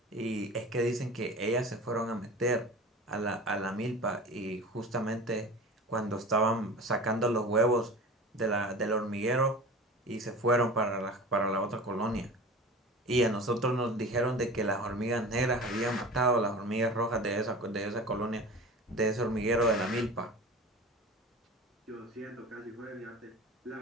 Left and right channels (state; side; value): normal; both; correlation 0.35